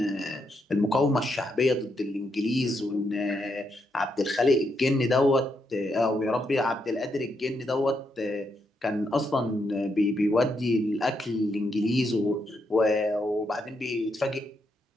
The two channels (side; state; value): both; normal; correlation 0.80